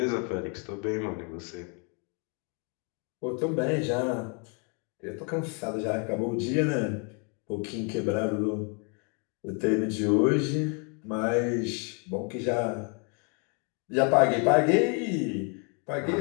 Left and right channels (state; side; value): quieter; right; 36.6 dB